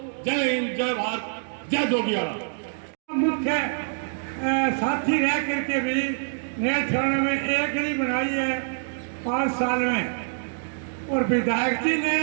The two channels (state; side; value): silent; left; digital silence